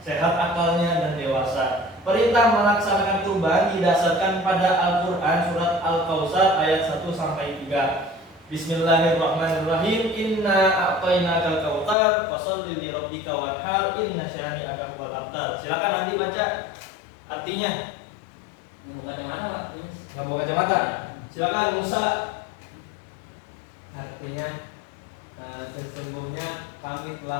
sehat akalnya dan dewasa, perintah melaksanakan kurban didasarkan pada Al-Quran surat Al-Kautsar ayat 1 sampai 3. Bismillahirrahmanirrahim. Inna a'tainakal kautsar fasholli li rabbika wanhar inna syani'aka huwal abtar. Silakan Andi baca artinya. Mau kacamata Pak? Nggak mau kacamata? Silakan Musa. Artinya sesungguhnya kami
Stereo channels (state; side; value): drops out; right; at 12.0 s